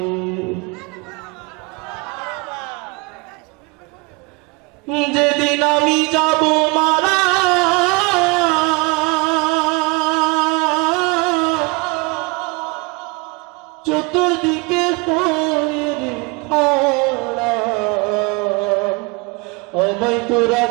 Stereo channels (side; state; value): left; quieter; 28.2 dB